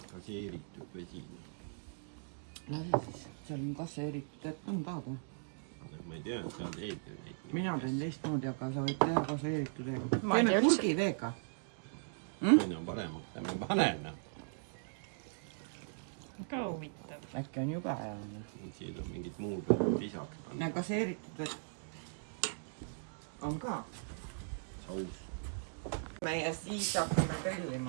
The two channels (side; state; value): left; silent; digital silence